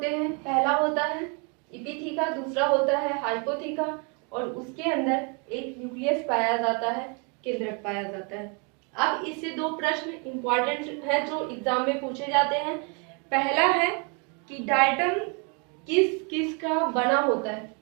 हैं, पहला होता है इपिथीका, दूसरा होता है हाइपोथीका और उसके अंदर एक न्यूक्लियस पाया जाता है, केंद्रक पाया जाता है। अब इससे दो प्रश्न इंपॉर्टेंट है जो एग्जाम में पूछे जाते हैं। पहला है कि डायटम किस किस का बना होता है,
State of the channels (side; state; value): left; quieter; 34.9 dB